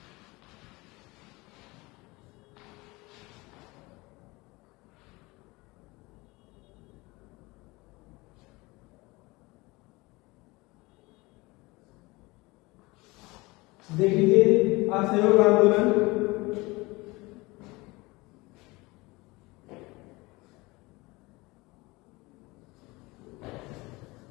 देख लीजिए असहयोग आंदोलन।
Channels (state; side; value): quieter; right; 23.0 dB